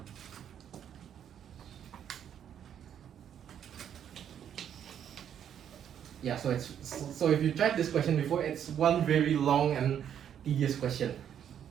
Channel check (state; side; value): quieter; left; 9.2 dB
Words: Yeah, so if you tried this question before, it's one very long and tedious question.